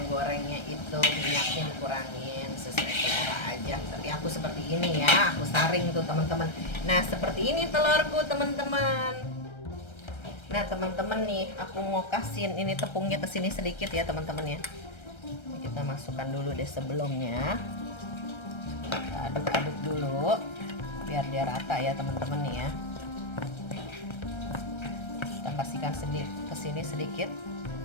itu minyaknya dikurangin sesuai selera aja. Tapi aku seperti ini ya, aku saring tuh teman-teman. Nah seperti ini telurku teman-teman. Nah teman-teman nih, aku mau kasihin ini tepungnya ke sini sedikit ya teman-teman ya. Kita masukkan dulu deh sebelumnya. Kita aduk-aduk dulu biar dia rata ya teman-teman nih ya. Pastikan ke sini sedikit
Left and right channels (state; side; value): late; right; 1.3 ms